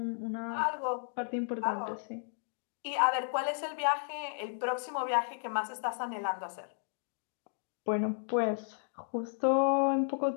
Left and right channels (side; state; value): right; silent; digital silence